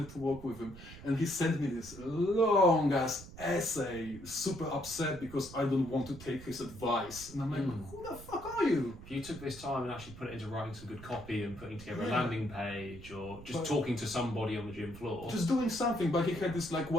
to work with him, and he sent me this long ass essay, super upset because I don't want to take his advice. And I'm like, who the fuck are you? If you took this time and actually put it into writing some good copy and putting together a landing page or just talking to somebody on the gym floor. Just doing something, but he had this like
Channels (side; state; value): right; noise; rumble, 15 dB below the sound